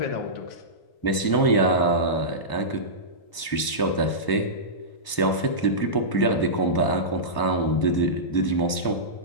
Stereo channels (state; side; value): late; right; 1.0 ms